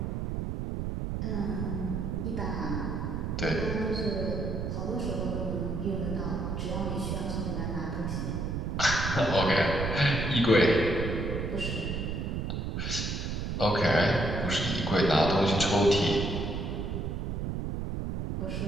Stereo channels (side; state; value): right; noise; rumble, 2 dB below the sound